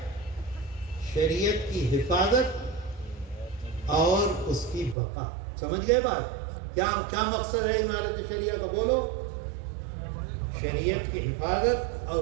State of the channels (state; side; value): drops out; left; at 5.0 s